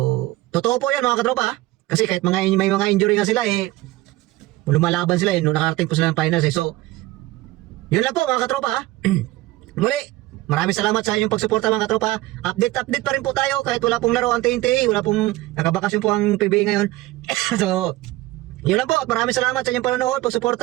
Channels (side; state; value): left; quieter; 18.0 dB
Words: totoo po yan, mga katropa. Kasi kahit may mga injury nga sila eh, lumalaban sila eh, nung nakarating po sila ng finals eh. So, yun lang po, mga katropa. Muli, maraming salamat sa inyong pagsuporta, mga katropa. Update pa rin po tayo kahit wala pong laro ang TNT, wala pong nakabakasyon po ang PBA ngayon. So, yun lang po, maraming salamat sa inyong panonood,